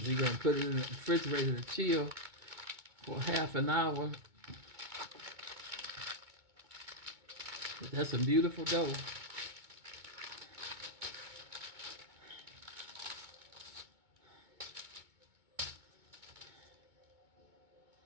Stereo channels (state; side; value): late; left; 2.2 ms